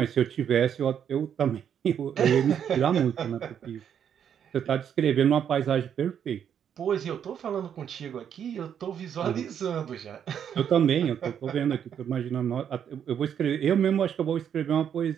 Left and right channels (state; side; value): quieter; left; 8.6 dB